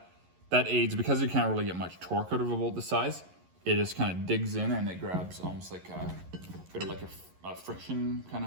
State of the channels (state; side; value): late; left; 11 ms